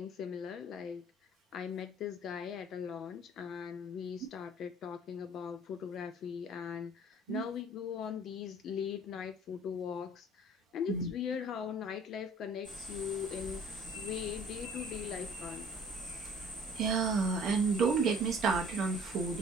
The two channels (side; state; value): both; normal; correlation 0.52